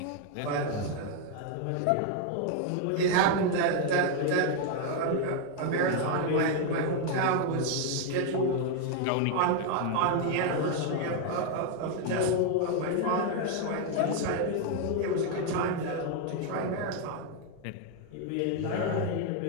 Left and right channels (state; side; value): different; both; correlation 0.01